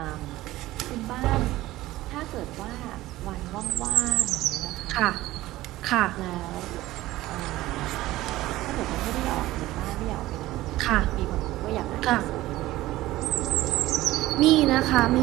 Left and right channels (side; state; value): left; quieter; 16.8 dB